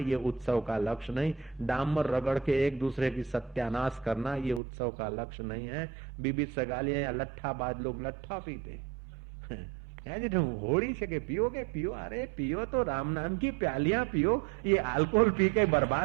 उत्सव का लक्ष्य नहीं। डामर रगड़ के एक दूसरे की सत्यानाश करना ये उत्सव का लक्ष्य नहीं है। बीबी सगालियां या लट्ठाबाज लोग लट्ठा पीते होड़ी से के पियोगे, पियो, अरे पियो तो राम नाम की प्यालियां पियो, ये अल्कोहल पी के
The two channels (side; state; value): left; drops out; at 4.6 s